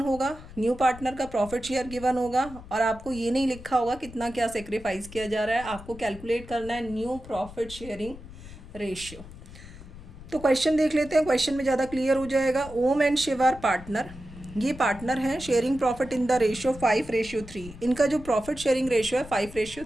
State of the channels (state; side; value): noise; left; rumble, 16 dB below the sound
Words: होगा, न्यू पार्टनर का प्रॉफिट शेयर गिवन होगा और आपको ये नहीं लिखा होगा कितना क्या सेक्रीफाइस किया जा रहा है। आपको कैलकुलेट करना है न्यू प्रॉफिट शेयरिंग रेशियो। तो क्वेश्चन देख लेते हैं, क्वेश्चन में ज़्यादा क्लियर हो जाएगा। Om and Shiv are partner, ये पार्टनर हैं, sharing profit in the ratio 5:3। इनका जो प्रॉफिट शेयरिंग रेशियो है